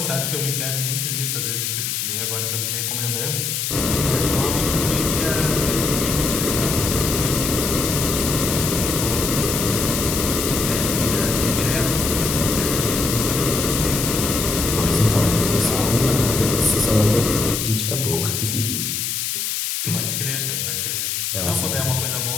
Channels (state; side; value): noise; left; hiss, 1 dB below the sound